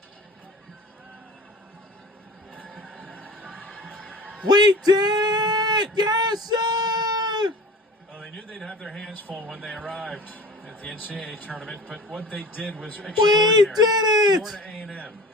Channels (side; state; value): both; normal; correlation 0.40